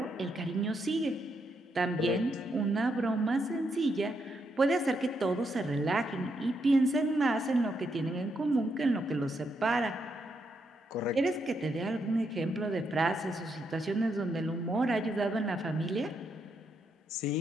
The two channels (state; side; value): normal; both; correlation 0.79